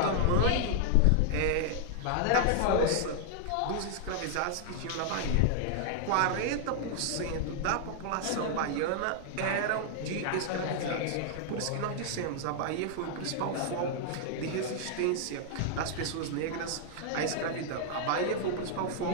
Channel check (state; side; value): different; both; correlation -0.01